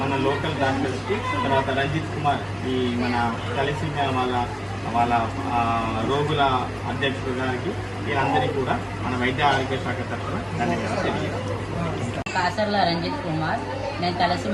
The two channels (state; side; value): identical; both; correlation 1.00